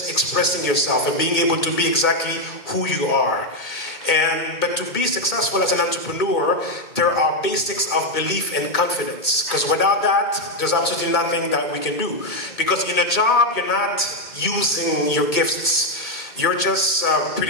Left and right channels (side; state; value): right; late; 2.1 ms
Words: expressing yourself and being able to be exactly who you are. But to be successful as an entrepreneur, there are basics of belief and confidence. Because without that, there's absolutely nothing that we can do. Because in a job, you're not using your gifts. You're just